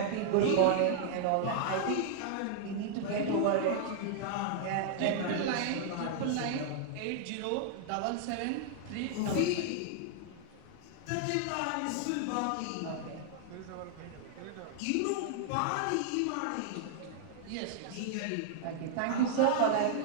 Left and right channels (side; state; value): both; different; correlation 0.00